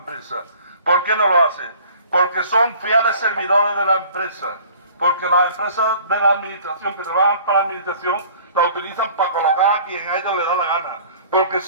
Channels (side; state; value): both; inverted; correlation -0.50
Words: ¿Por qué no lo hace? Porque son fieles servidores de la empresa, porque las empresas de la administración, que trabajan para la administración, la utilizan para colocar a quien a ellos les da la gana, porque